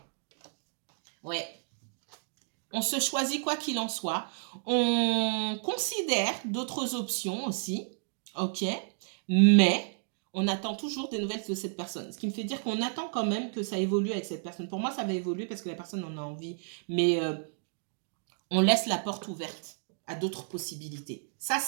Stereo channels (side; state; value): left; silent; digital silence